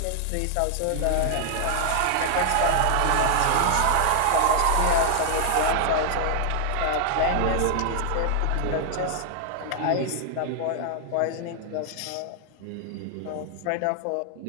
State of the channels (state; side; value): different; both; correlation 0.00